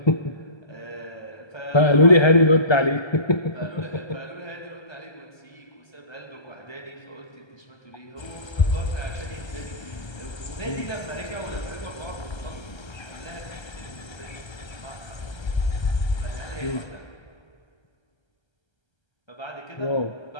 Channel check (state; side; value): late; right; 1.3 ms